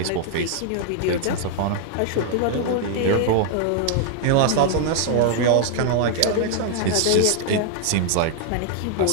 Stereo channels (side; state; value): both; different; correlation 0.00